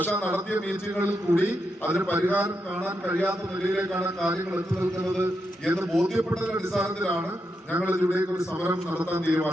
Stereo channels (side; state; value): both; normal; correlation 0.84